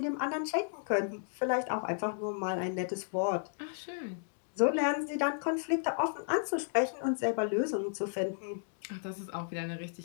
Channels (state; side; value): silent; right; digital silence